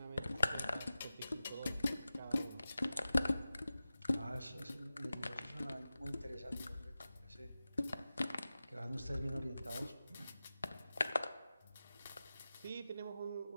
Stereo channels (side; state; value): both; inverted; correlation -0.95